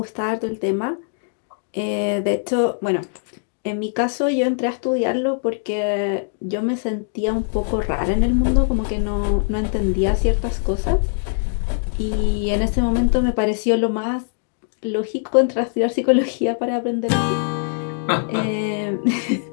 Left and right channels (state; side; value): silent; right; 64 dB below the other